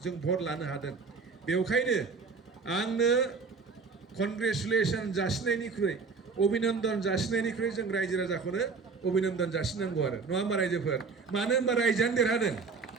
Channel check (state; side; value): quieter; left; 4.8 dB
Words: जों भट लानो हादों बेवखायनो आंनो कनग्रेचुलेसन जासिनायनिख्रुइ अभिनन्दन जासिनायनिख्रुइ जों रायजो राजाखौनो अभिनन्दन जासिनांगौ आरो नङा होमबा रायजोफोर मानो होनबा रायजोआनो देरहादों